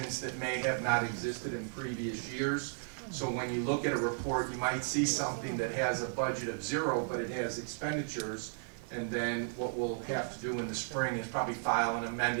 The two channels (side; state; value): left; silent; digital silence